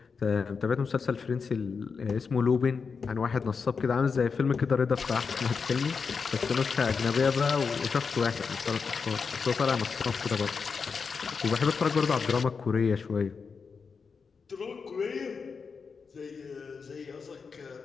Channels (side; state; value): right; quieter; 5.4 dB